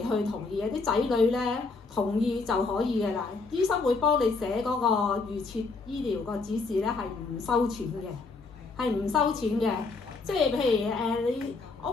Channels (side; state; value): right; quieter; 4.1 dB